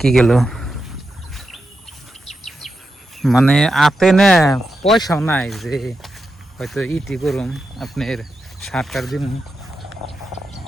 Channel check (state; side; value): normal; both; correlation 0.88